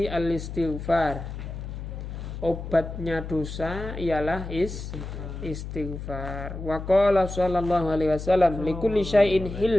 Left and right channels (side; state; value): left; noise; hum, 8 dB below the sound